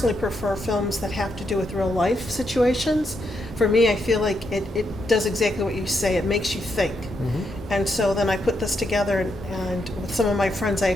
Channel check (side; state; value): both; normal; correlation 0.81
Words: prefer films that have to do with real life situations. For me, I feel like it does exactly what you say. It makes you think. Mm-hmm. And so then I put this together, and with some of my friends, I